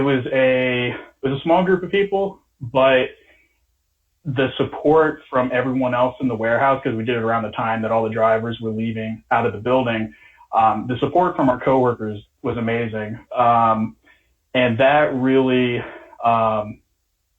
was a small group of people, but the support from everyone else in the warehouse, because we did it around the time that all the drivers were leaving out of the building, the support from our coworkers was amazing. And that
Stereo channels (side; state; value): both; identical; correlation 1.00